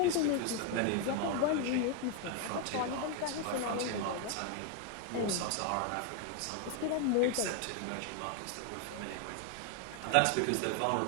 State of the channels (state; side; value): different; both; correlation 0.01